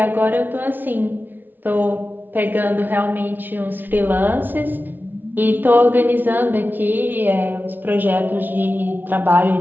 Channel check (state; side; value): late; left; 0.090 ms